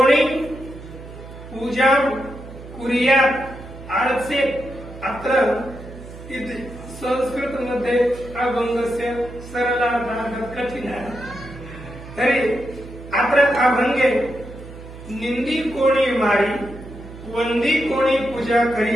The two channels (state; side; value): noise; right; hum, 15 dB below the sound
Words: पूजा कुर्यात आळसे अत्र संस्कृत मध्ये अभंगस्य सरलार्थः कठिनः तरी अत्र अभंगे निंदी कोणी मारी वंदी कोणी पूजा